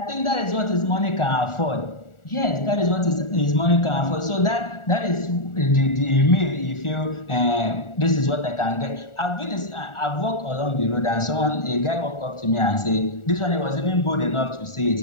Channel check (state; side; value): late; right; 1.4 ms